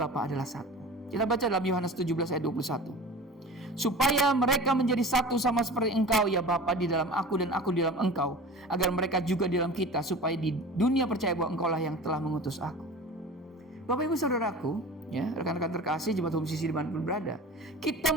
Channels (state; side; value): normal; both; correlation 0.37